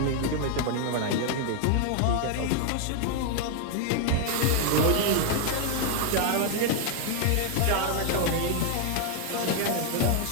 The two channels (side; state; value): both; different; correlation 0.00